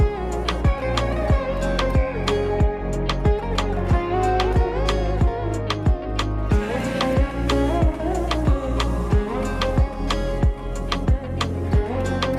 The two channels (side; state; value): both; identical; correlation 1.00